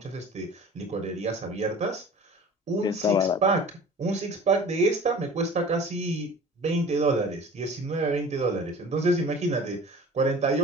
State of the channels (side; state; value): both; normal; correlation 0.42